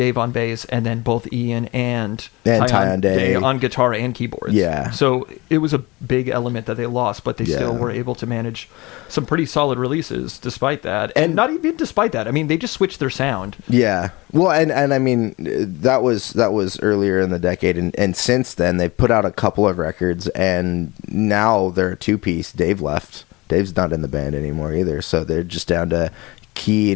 on bass, and then both Ian and Tyonde on guitar and keyboards. Yeah. So it was a big element that they lost, but they still were able to manage some pretty solid releases despite that. And not even despite that. I mean, they just switched their sound. Yeah. Well, and I mean, that was earlier in the decade, and since then they've put out a couple of records, and now they're a 2-piece. Dave left. Dave's not in the band anymore either, so they're just down to key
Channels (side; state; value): right; quieter; 22.7 dB